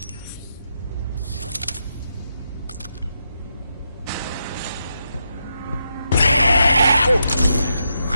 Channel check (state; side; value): inverted; both; correlation -0.83